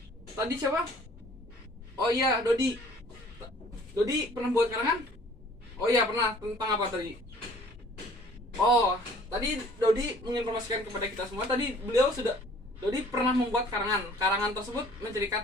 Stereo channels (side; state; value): both; normal; correlation 0.53